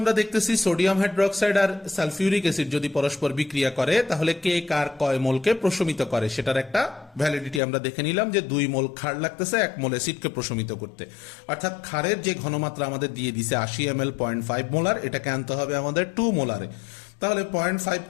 দেখতেছি সোডিয়াম হাইড্রোক্সাইড আর সালফিউরিক অ্যাসিড যদি পরস্পর বিক্রিয়া করে তাহলে কে কার কয় মোলকে প্রশমিত করে সেটার একটা ভ্যালিডিটি আমরা দেখে নিলাম, যে 2 মোল ক্ষার লাগতেছে 1 মোল অ্যাসিডকে প্রশমিত করতে। অর্থাৎ ক্ষারের যে ঘনমাত্রা আমাদের দিয়ে দিছে 80 ml 0.5 মোলার, এটাকে আনতে হবে আমাদের 2 মোলারে। তাহলে 0.5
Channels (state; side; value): drops out; right; at 7.6 s